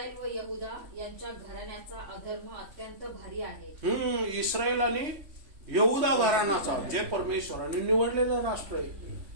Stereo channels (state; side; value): late; left; 3.5 ms